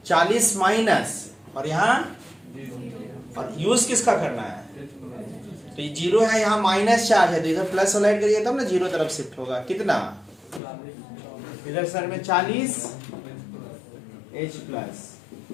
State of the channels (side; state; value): right; drops out; at 10.6 s